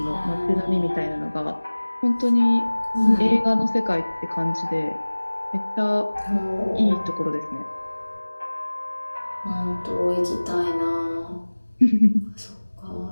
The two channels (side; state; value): both; inverted; correlation -1.00